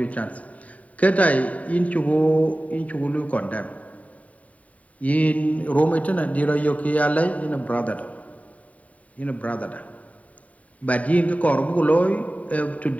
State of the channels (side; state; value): right; late; 0.069 ms